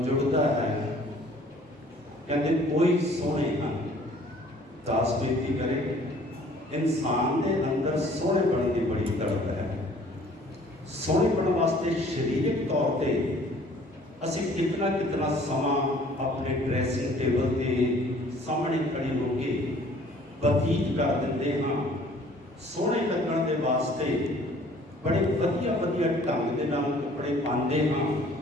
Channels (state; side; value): normal; both; correlation 0.54